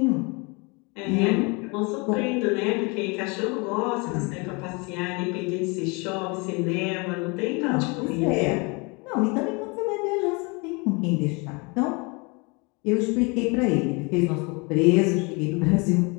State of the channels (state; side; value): quieter; right; 29.4 dB